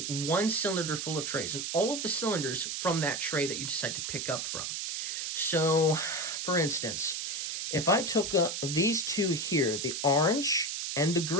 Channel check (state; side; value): noise; right; hiss, 3 dB below the sound